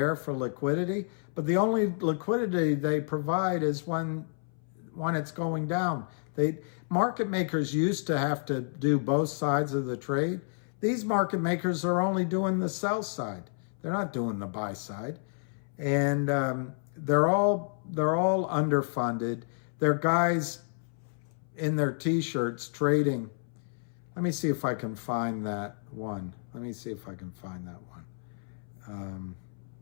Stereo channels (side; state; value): right; silent; 58 dB below the other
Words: for liquidity, but the only liquidity they provide is when it's going down. Market makers used to have to do both sides of the trade. These market makers are only doing the sell side. They're not doing the buy side. And they're all underfunded. They're guys in their t-shirts trading. Let me see if I can find that one. Let me see if I can find that one.